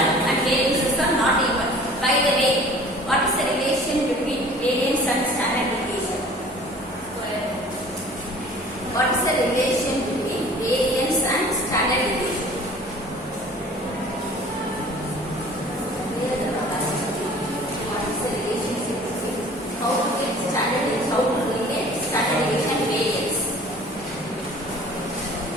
and variances are not equal. By the way, what is the relation between variance and standard deviation? What is the relation between variance and standard deviation? Here the capacity. What is the relationship between how to get standard deviation, how to relate standard deviation and variance?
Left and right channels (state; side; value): normal; both; correlation 0.47